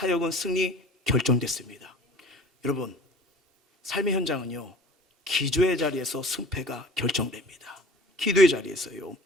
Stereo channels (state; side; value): normal; both; correlation 0.45